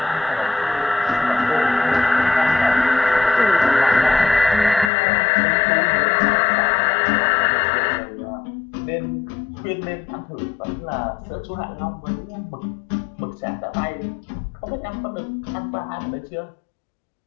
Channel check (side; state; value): right; drops out; at 4.9 s